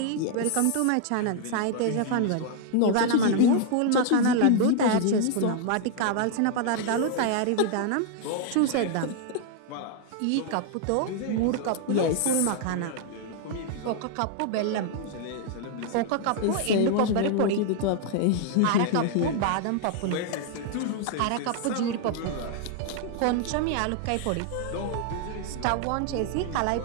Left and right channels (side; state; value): both; different; correlation 0.00